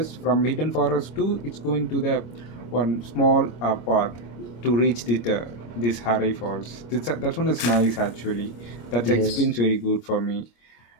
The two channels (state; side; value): late; right; 25 ms